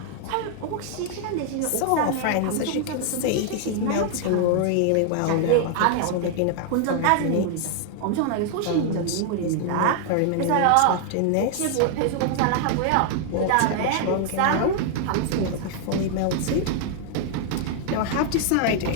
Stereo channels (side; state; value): both; different; correlation 0.00